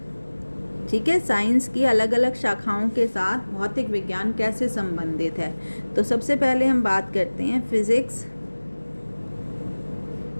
ठीक है। साइंस की अलग अलग शाखाओं के साथ भौतिक विज्ञान कैसे संबंधित है। तो सबसे पहले हम बात करते हैं physics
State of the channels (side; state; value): both; inverted; correlation -1.00